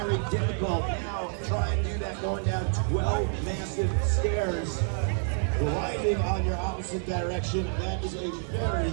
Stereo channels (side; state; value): left; silent; 59 dB below the other